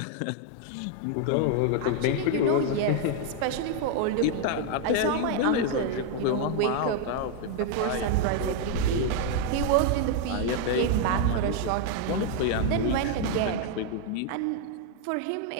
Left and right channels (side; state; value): both; different; correlation 0.00